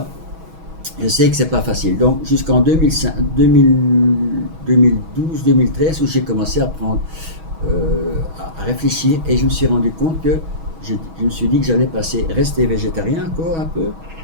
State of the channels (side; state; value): left; late; 6.2 ms